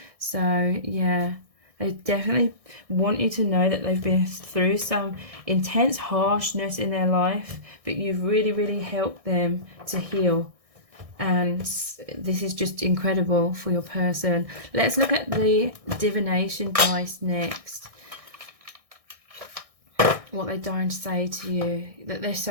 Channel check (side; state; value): left; late; 1.6 ms